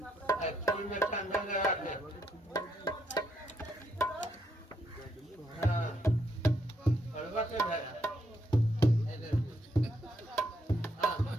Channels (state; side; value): normal; both; correlation 0.76